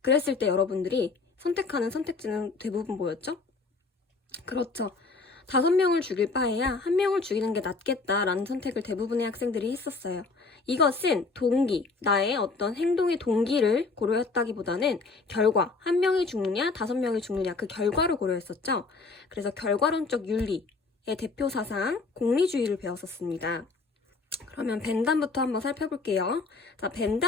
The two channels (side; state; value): right; quieter; 4.1 dB